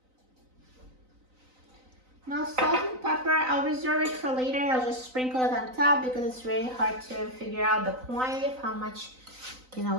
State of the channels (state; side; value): late; left; 3.9 ms